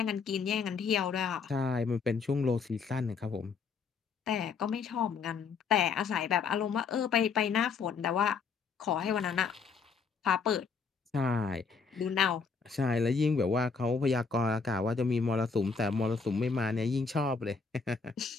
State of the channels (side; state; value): right; quieter; 5.3 dB